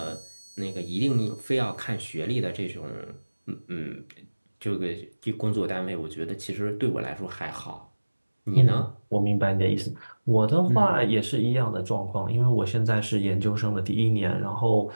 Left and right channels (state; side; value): inverted; both; correlation -1.00